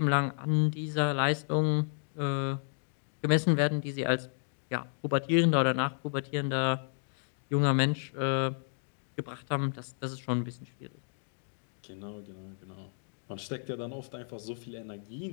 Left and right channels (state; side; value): silent; right; digital silence